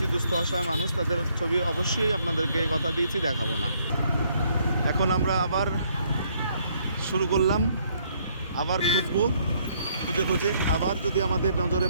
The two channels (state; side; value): inverted; both; correlation -0.68